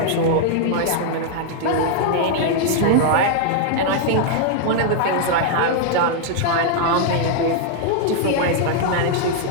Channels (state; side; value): different; both; correlation 0.00